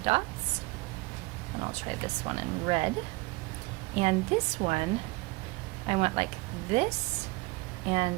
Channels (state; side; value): quieter; left; 24.1 dB